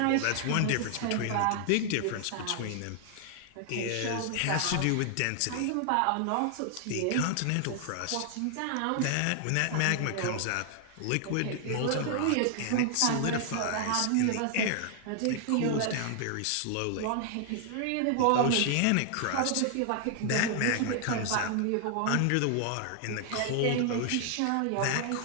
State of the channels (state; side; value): different; both; correlation 0.00